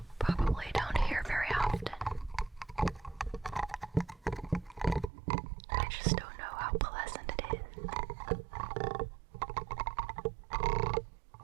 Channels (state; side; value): drops out; left; at 5.1 s